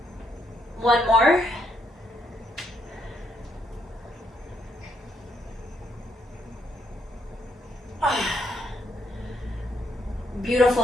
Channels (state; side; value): normal; both; correlation 0.74